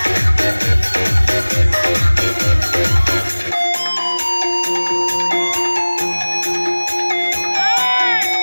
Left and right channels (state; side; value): inverted; both; correlation -1.00